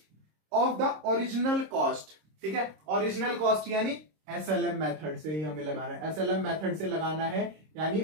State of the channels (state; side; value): late; left; 26 ms